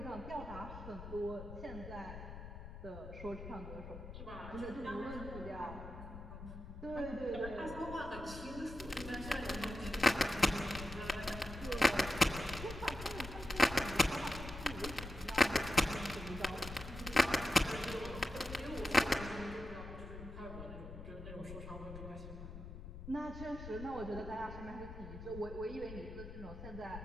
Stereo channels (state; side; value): noise; left; rumble, 11 dB below the sound